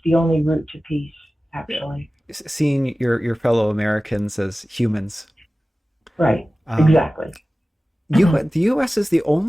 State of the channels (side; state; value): both; normal; correlation 0.96